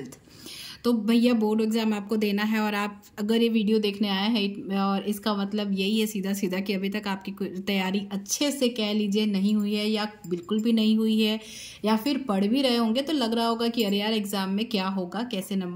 तो भैया बोर्ड एग्ज़ाम आपको देना है और आप अगर ये वीडियो देखने आए हैं और इसका मतलब यही है सीधा सीधा कि अभी तक आपकी तैयारी अच्छे से कह लीजिए नहीं हुई है या बिल्कुल भी नहीं हुई है, या फिर पढ़ भी रहे होंगे तो लग रहा होगा कि अरे यार एग्ज़ाम में क्या होगा, कैसे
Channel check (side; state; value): both; identical; correlation 1.00